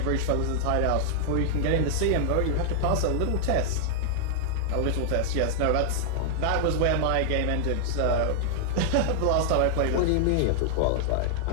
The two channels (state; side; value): different; both; correlation -0.01